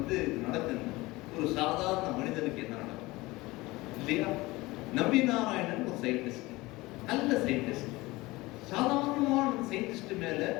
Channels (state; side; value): quieter; right; 20.9 dB